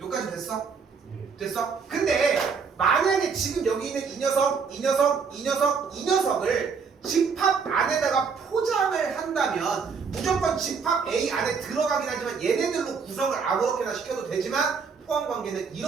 됐어? 됐어? 근데 만약에 지금 여기 있는 이 녀석, 이 녀석, 이 녀석, 이 녀석을 집합 안에다가 포장을 한다면 무조건 집합 A 안에 들어가긴 하지만 얘네들로 구성을 아무렇게나 시켜도 되지만 포함 관계는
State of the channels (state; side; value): quieter; left; 5.6 dB